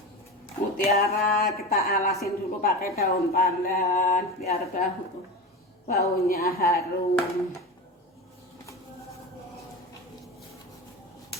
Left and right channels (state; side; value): normal; both; correlation 0.25